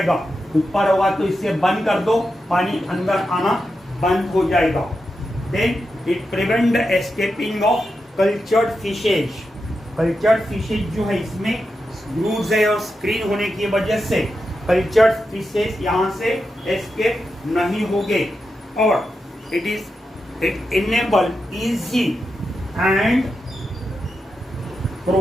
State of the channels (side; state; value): both; normal; correlation 0.88